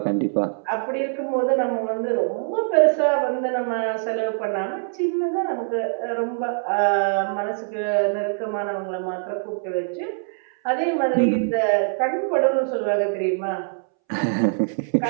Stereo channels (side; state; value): left; silent; 63 dB below the other